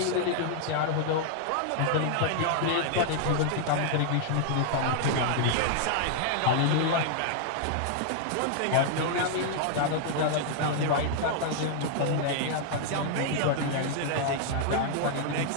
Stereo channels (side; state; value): both; different; correlation -0.01